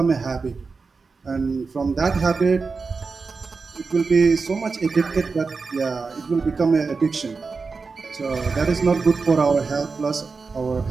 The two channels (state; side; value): quieter; left; 4.6 dB